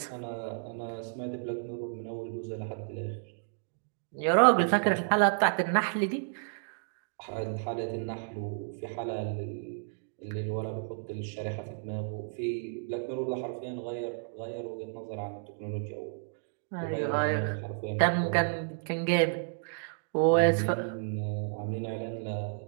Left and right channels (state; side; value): silent; left; digital silence